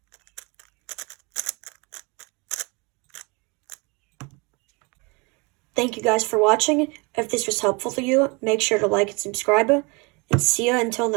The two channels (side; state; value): left; quieter; 28.8 dB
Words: Thank you guys for watching. If this was helpful to you, make sure to like and subscribe, and see ya until